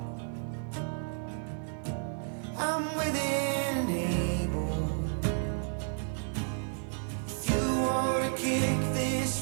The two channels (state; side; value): silent; left; 57 dB below the other